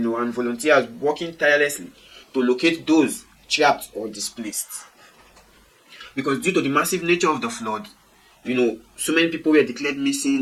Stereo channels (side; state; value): both; identical; correlation 1.00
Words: volunteers working tirelessly to locate those trapped or displaced. Because due to the massive nature of the flood, so many people were declared